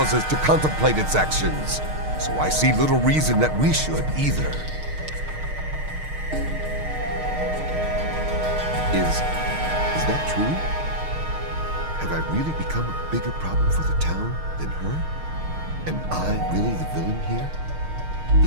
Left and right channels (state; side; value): late; left; 6.5 ms